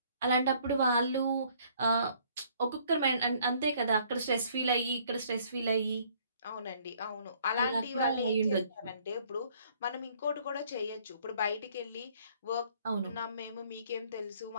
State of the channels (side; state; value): both; inverted; correlation -0.61